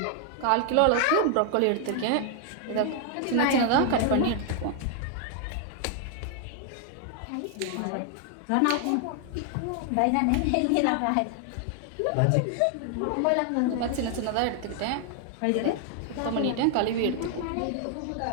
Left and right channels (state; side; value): different; both; correlation 0.00